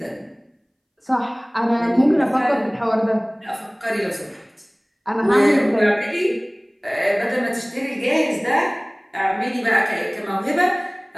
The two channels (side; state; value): both; identical; correlation 1.00